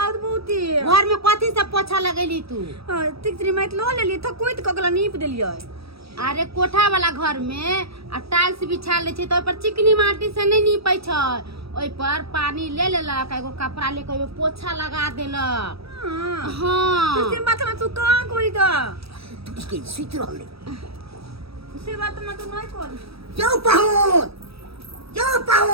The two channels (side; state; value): left; late; 0.77 ms